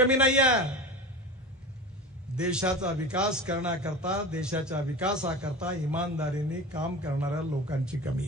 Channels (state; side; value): normal; both; correlation 0.31